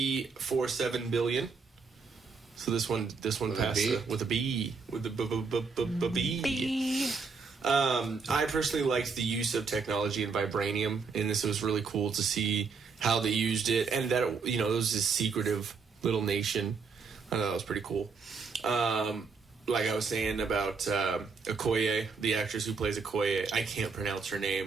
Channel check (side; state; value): left; quieter; 5.0 dB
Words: billion. So this one passed with a B. With a B. I personally liked the use of technology and vibranium in this. It was really cool to see how they used it, and that it was this secretive little nation. I thought that was pretty cool. Like I was saying about Okoye, the actress who plays Okoye, I can't pronounce her